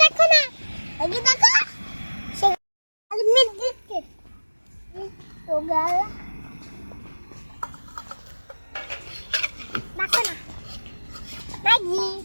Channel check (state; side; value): inverted; both; correlation -1.00